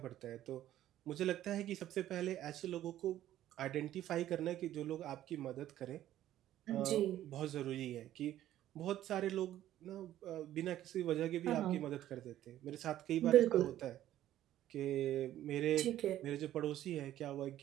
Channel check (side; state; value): left; quieter; 12.8 dB